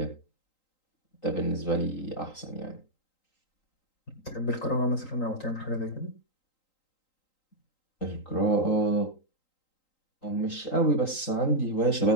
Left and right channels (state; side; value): late; right; 3.8 ms